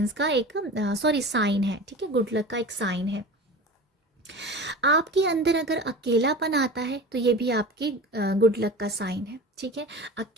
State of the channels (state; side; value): normal; both; correlation 0.34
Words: का एक साइन है, ठीक है, गुड लक का एक साइन है। आपके अंदर अगर अकेलापन आता है तो ये भी आपकी गुड लक का साइन है, ठीक है।